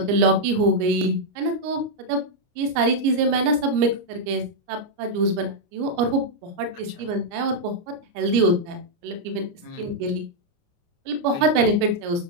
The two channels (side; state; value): left; late; 29 ms